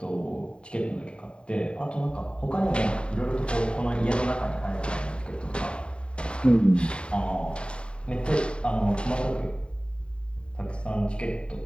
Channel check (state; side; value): late; right; 0.053 ms